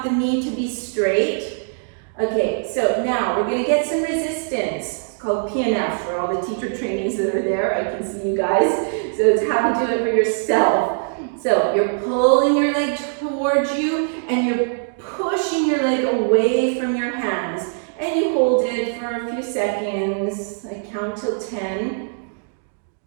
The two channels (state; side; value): silent; left; digital silence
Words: the knee to be straight. Okay, so now we're going to get some resistance. It's called PNF for all the teacher trainings that are there. I can see you guys. So it's how to do it for yourself. So you're pulling your leg towards you and you're pushing your leg away from your hands. And you hold it for a few seconds. I count till 10.